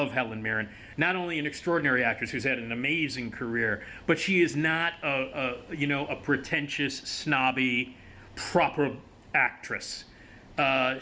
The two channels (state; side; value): identical; both; correlation 1.00